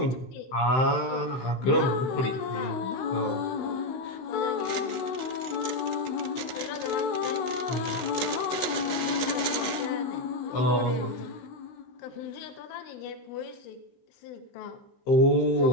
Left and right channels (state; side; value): late; right; 15 ms